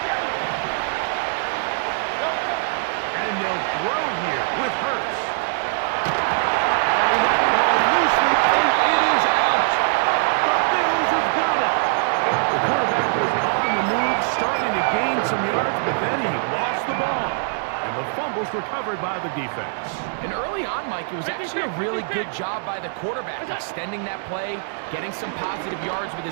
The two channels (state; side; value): silent; left; digital silence